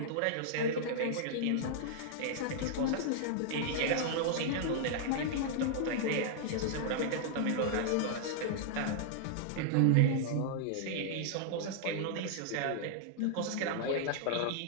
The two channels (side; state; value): both; different; correlation -0.01